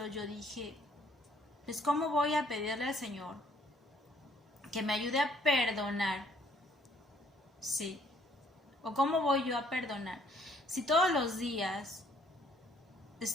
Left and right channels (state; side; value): normal; both; correlation 0.63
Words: yo dije, pues ¿cómo voy a pedirle al Señor que me ayude a perdonar? Sí. ¿O cómo voy yo a perdonar? Si todos los días